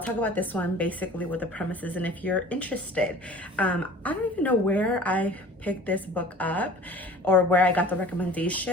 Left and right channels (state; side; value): normal; both; correlation 0.44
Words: talk about this one basically with the premises, and if you're interested. I don't even know where I picked this book up or where I got the